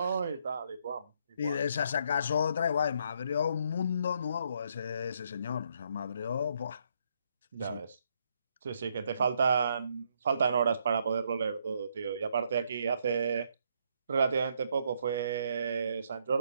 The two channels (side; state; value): both; inverted; correlation -0.72